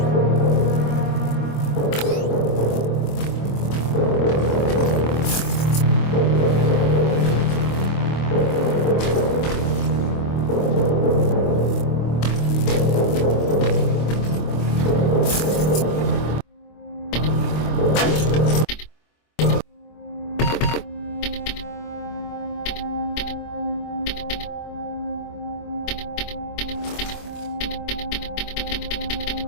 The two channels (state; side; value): late; right; 25 ms